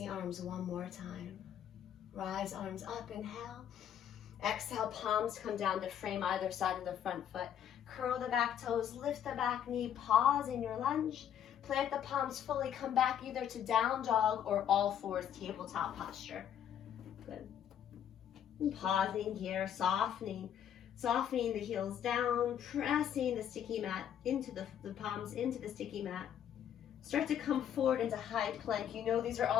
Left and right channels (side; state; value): right; quieter; 9.5 dB